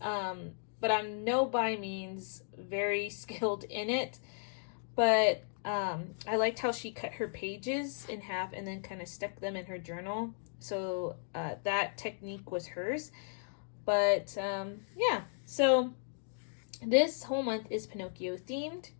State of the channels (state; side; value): silent; right; digital silence